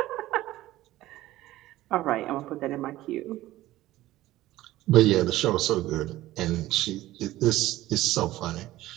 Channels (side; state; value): left; quieter; 16.0 dB